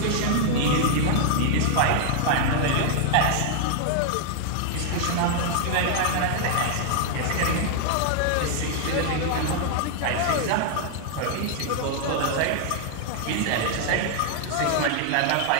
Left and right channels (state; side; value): different; both; correlation -0.01